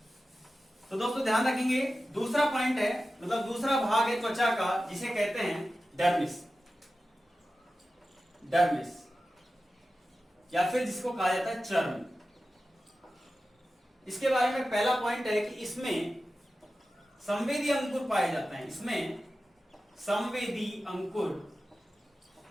तो दोस्तों ध्यान रखेंगे, दूसरा पॉइंट है, मतलब दूसरा भाग है त्वचा का जिसे कहते हैं डर्मिस, डर्मिस या फिर जिसको कहा जाता है चर्म। इसके बारे में पहला पॉइंट है कि इसमें संवेदी अंकुर पाए जाते हैं, इसमें संवेदी अंकुर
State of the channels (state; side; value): normal; both; correlation 0.93